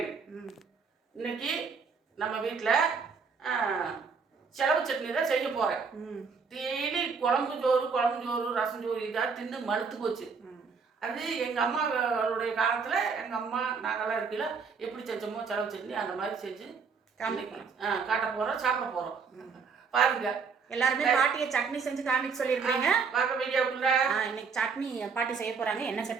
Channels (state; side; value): quieter; left; 5.4 dB